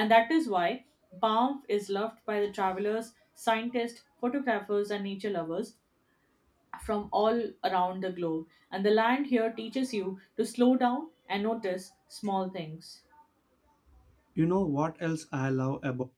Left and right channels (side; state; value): both; identical; correlation 1.00